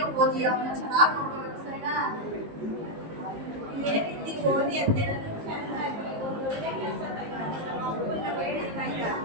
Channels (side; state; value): left; late; 19 ms